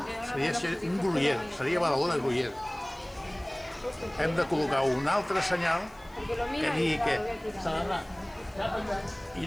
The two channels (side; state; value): left; noise; hiss, 28 dB below the sound